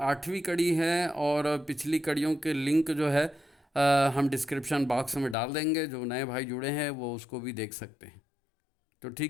8वीं कड़ी है, और पिछली कड़ियों के लिंक जो है हम डिस्क्रिप्शन बॉक्स में डाल देंगे। जो नए भाई जुड़े हैं वो उसको भी देख सकते हैं। तो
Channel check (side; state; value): right; drops out; at 5.4 s